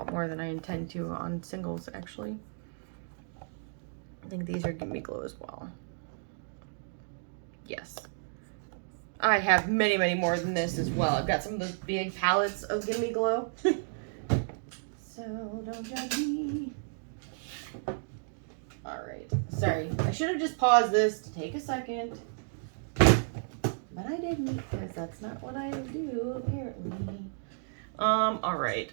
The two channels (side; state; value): left; silent; digital silence